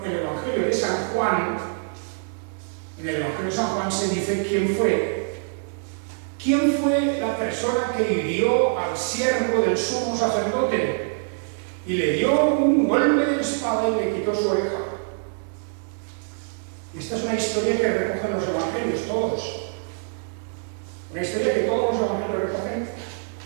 el Evangelio de San Juan, en el Evangelio de San Juan se dice quién fue ¿quién fue la persona que hirió al siervo del sumo sacerdote y le dio un golpe de espada y le quitó su oreja? Esta es una historia que recogen los evangelios, todos. Una historia que todos los evangelios recogen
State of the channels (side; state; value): left; silent; digital silence